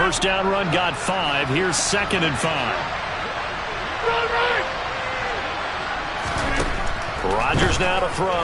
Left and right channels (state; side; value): identical; both; correlation 1.00